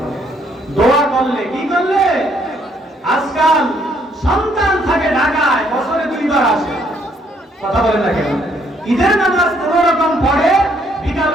দোয়া করলে। কি করলে? আজকাল সন্তান থাকে ঢাকায়, বছরে 2 বার আসে। কথা বলেন না কেন? ঈদের নামাজ কোন রকম পড়ে, বিকাল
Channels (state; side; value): normal; both; correlation 0.68